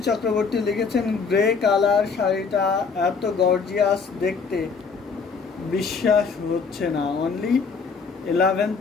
Chakraborty লিখেছেন, গ্রে কালার শাড়িটা এত গর্জিয়াস দেখতে, বিশ্বাস হচ্ছে না, অনলি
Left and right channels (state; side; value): quieter; right; 5.2 dB